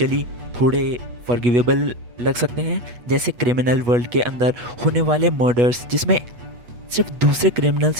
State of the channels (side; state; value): left; late; 8.3 ms